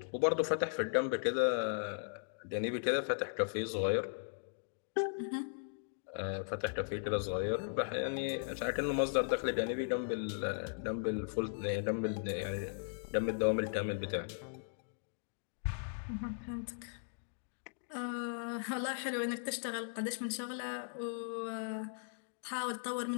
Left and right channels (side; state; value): right; silent; digital silence